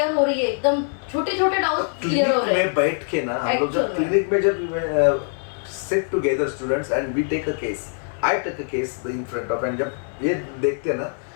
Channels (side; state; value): right; silent; 57 dB below the other